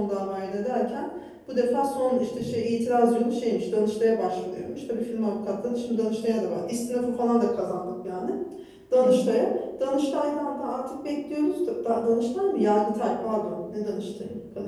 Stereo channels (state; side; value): identical; both; correlation 1.00